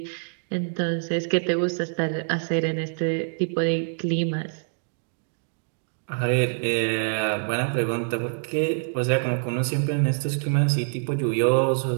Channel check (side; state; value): left; silent; digital silence